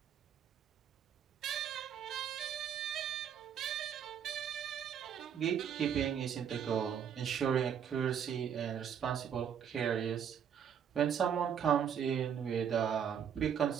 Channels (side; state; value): left; quieter; 8.4 dB